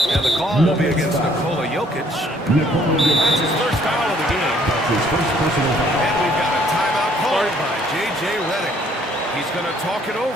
And the call will be against Nikola Jokic. That's his first foul of the game. And we've got a timeout called by J.J. Redick. He's going to talk it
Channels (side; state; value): both; normal; correlation 0.63